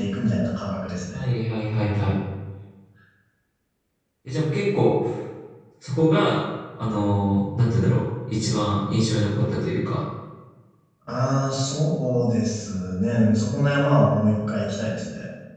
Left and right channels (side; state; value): both; identical; correlation 1.00